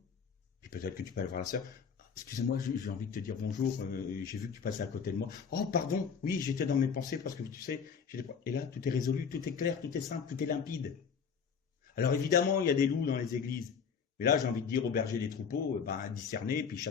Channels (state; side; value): quieter; right; 6.4 dB